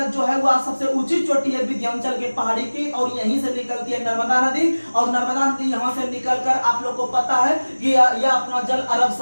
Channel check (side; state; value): both; inverted; correlation -1.00